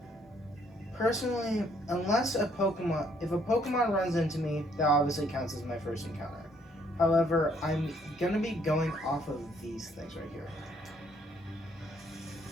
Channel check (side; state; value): both; normal; correlation 0.67